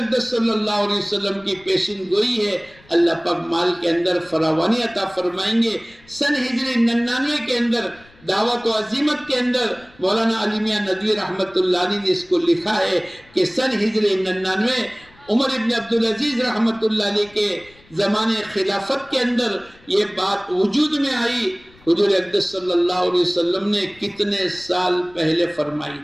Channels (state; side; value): noise; left; rumble, 27 dB below the sound